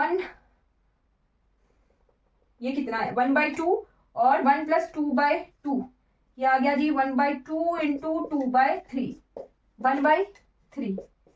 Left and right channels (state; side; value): identical; both; correlation 1.00